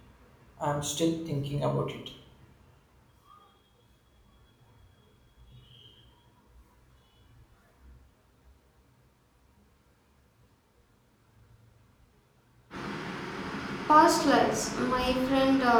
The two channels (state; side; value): identical; both; correlation 1.00